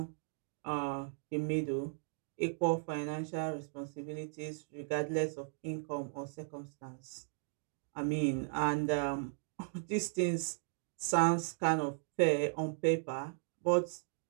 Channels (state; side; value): silent; left; digital silence